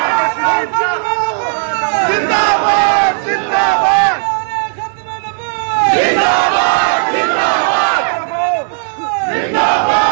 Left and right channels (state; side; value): silent; left; digital silence